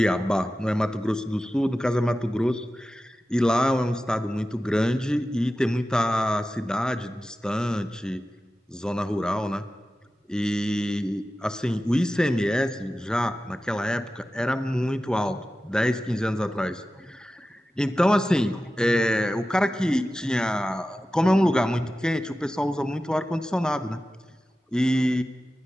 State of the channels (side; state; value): both; normal; correlation 0.94